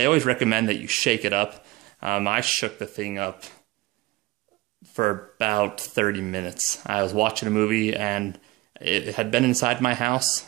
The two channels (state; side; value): quieter; left; 19.4 dB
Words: always recommend that you shake it up. I shook the thing up for about 30 minutes. I was watching a movie and it had been inside my